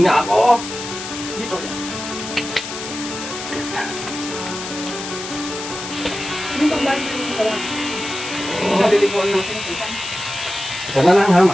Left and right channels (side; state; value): left; noise; hiss, 8 dB below the sound